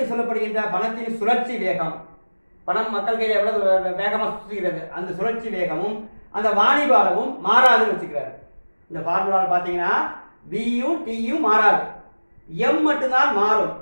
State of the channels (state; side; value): inverted; both; correlation -1.00